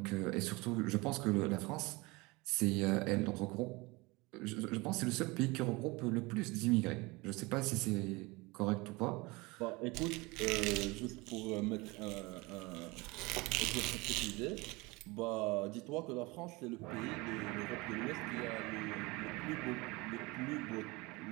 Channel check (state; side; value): quieter; left; 24.1 dB